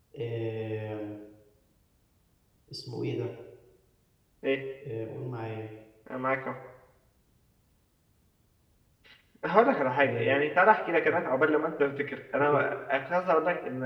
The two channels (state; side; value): identical; both; correlation 1.00